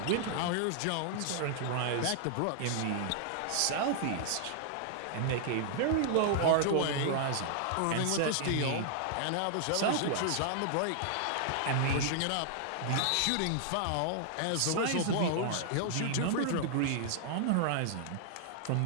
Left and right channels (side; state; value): both; different; correlation -0.01